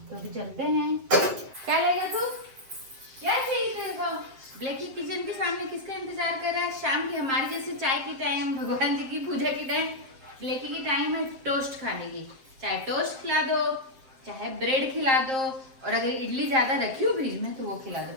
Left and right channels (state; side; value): late; left; 7.6 ms